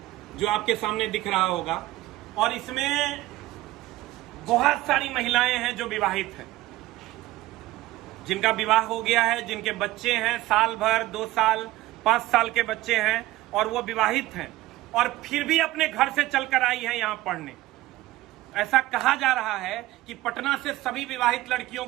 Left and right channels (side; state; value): left; quieter; 17.2 dB